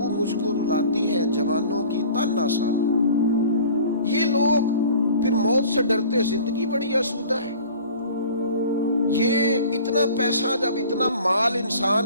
مجھ کو رلاتی ہے جوانوں کی تن آسانی۔ یہ لوگ پھر موت سے ڈرتے، زندگی بڑی آسودہ ہے۔ یہ اتنا پیسہ جب اتنا مال انسان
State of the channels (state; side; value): inverted; both; correlation -0.46